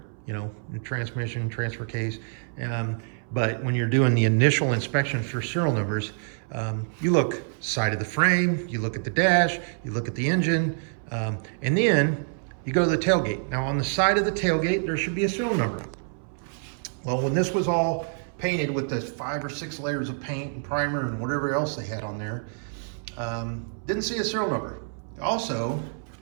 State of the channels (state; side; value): silent; left; 60 dB below the other